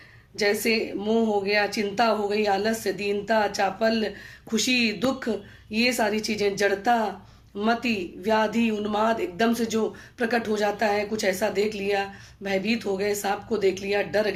जैसे मोह हो गया, चिंता हो गई, आलस्य, दीनता, चापल, खुशी, दुख, ये सारी चीजें, जड़ता, मति, व्याधि, उन्माद एकदम से जो प्रकट हो जाता है, कुछ ऐसा देख लिया, भयभीत हो गए, सांप को देख लिया, डर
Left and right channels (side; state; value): both; identical; correlation 1.00